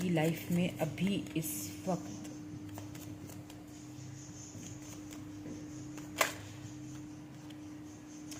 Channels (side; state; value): both; identical; correlation 1.00